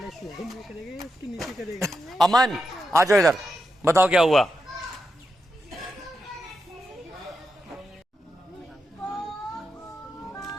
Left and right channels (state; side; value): normal; both; correlation 0.87